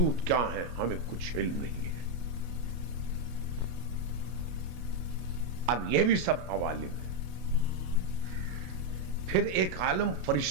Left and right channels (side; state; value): left; late; 33 ms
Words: کیا ہیں ہمیں کچھ علم نہیں ہے۔ اب یہ بھی سب عوالم ہے۔ پھر ایک عالم